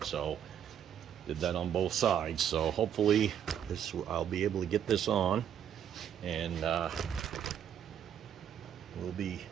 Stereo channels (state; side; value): quieter; left; 9.3 dB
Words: So did that on both sides. So hopefully I'll be able to get this on, and we'll be